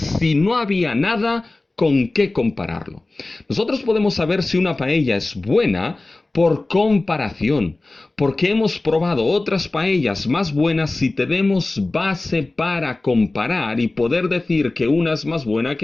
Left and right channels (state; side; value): quieter; right; 3.0 dB